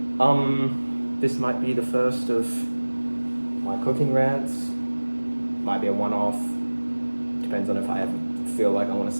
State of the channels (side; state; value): both; inverted; correlation -1.00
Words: This might be the first of my cooking rants. Might be a one-off. Depends on if I ever feel like I want to